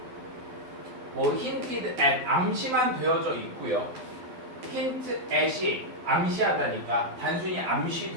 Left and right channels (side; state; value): left; late; 12 ms